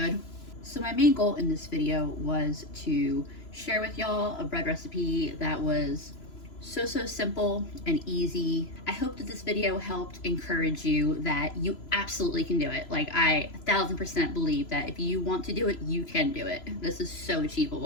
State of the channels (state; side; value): late; right; 3.0 ms